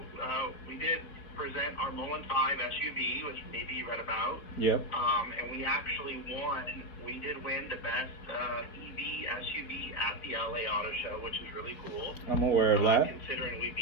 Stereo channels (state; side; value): late; right; 4.1 ms